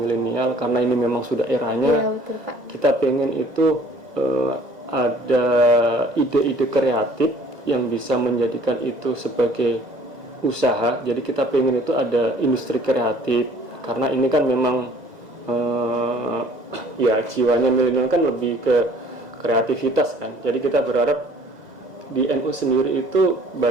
karena ini memang sudah eranya, betul, Pak. Kita pengen itu ada ide-ide kreatif yang bisa menjadikan itu sebagai usaha. Jadi kita pengen itu ada industri kreatif, karena ini kan memang ya jiwanya milenial kan lebih ke kreativitas kan. Jadi kita berharap di NU sendiri itu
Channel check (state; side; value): late; left; 2.0 ms